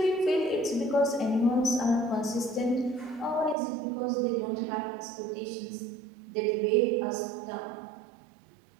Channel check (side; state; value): left; drops out; at 3.6 s